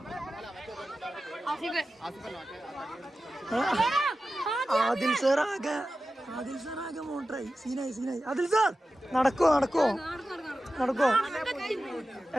ആദിൽ സാർ ആകെ മോട്ടറായി. സീനായി. ആദിൽ സാർ നടക്കോ?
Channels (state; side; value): normal; both; correlation 0.94